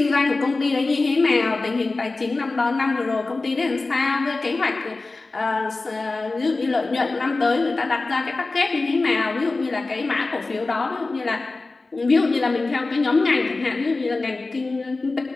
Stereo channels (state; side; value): quieter; right; 3.5 dB